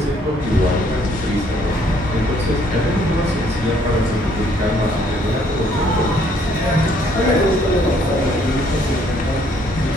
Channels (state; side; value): normal; both; correlation 0.65